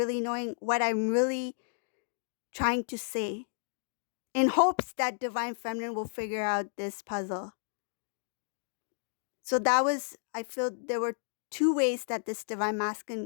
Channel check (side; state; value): right; silent; digital silence